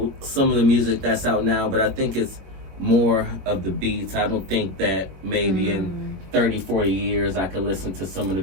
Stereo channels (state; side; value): late; left; 21 ms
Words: some of the music that's out now, but I think it's more of the beats. I don't think that maybe in 30, 40 years I could listen to some of the